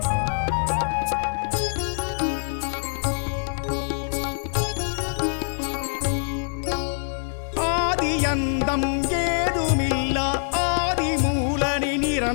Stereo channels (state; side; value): silent; right; 62 dB below the other